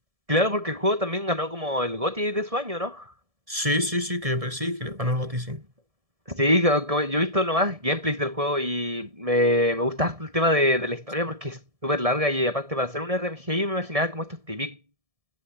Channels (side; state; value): left; late; 1.7 ms